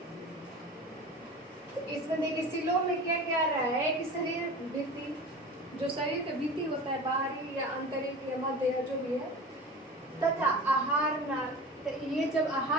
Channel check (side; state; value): both; normal; correlation 0.34